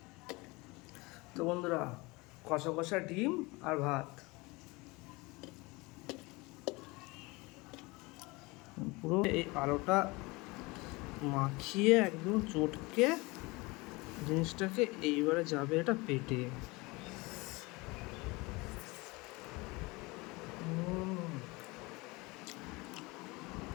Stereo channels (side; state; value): right; quieter; 24.2 dB